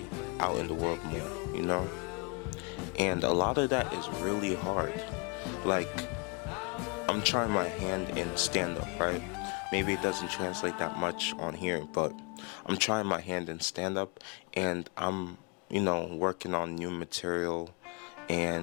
out in the world more, And a lot of that is really hard. Like, I'm trying my hand in stand-up, right? Maybe it doesn't translate that much on here, but I'm trying my hand in stand-up, and I'm, working on new material,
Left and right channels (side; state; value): right; quieter; 32.5 dB